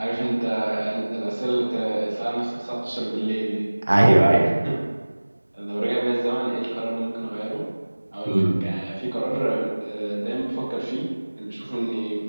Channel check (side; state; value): both; inverted; correlation -1.00